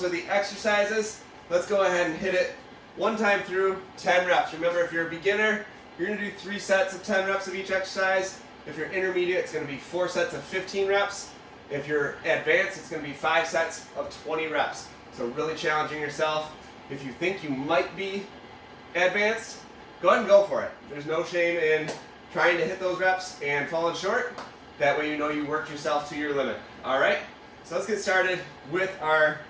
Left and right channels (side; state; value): both; identical; correlation 1.00